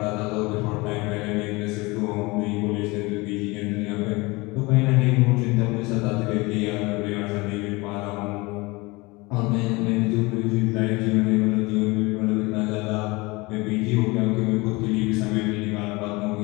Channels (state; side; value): quieter; right; 24.0 dB